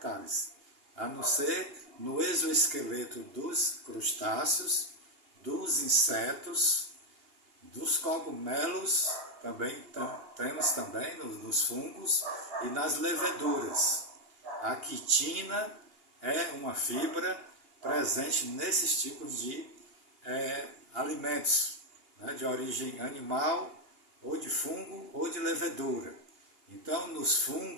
a não ser no exoesqueleto dos crustáceos, dos insetos, dos cogumelos, temos também nos fungos e nas leveduras. A quitina é uma fibra presente nesses tipos de alimentos, né, de origem animal, ou de fungo, ou de levedura. Então, nos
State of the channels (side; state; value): left; late; 2.8 ms